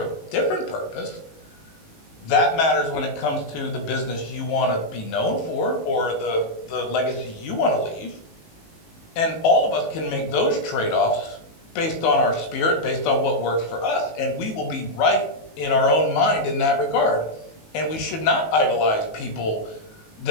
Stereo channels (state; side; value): late; right; 19 ms